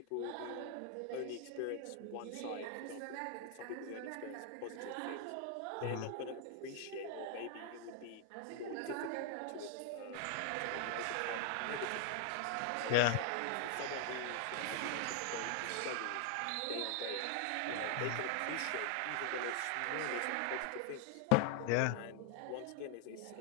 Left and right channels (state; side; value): different; both; correlation 0.00